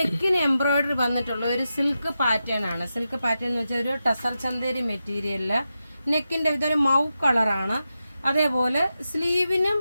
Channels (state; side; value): inverted; both; correlation -0.89